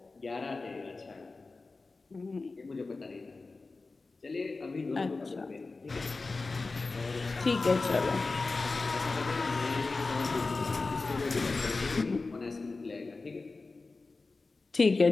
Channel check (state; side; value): quieter; right; 3.7 dB